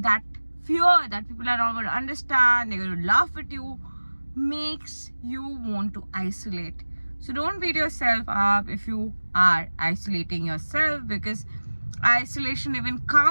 fear that people are not going to understand, they're going to laugh at you, makes you want to isolate. So don't beat yourself up if you are isolating yourself, because isolation even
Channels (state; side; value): inverted; both; correlation -1.00